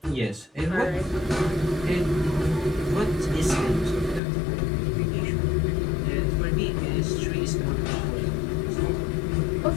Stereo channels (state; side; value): drops out; right; at 4.2 s